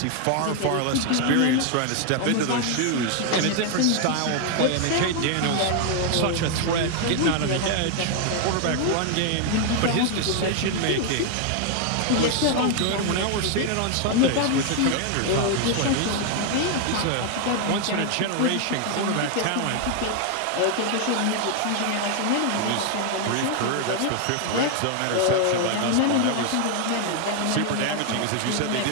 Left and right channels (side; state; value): both; different; correlation 0.00